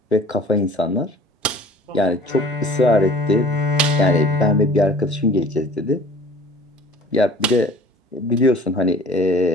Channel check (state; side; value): normal; both; correlation 0.47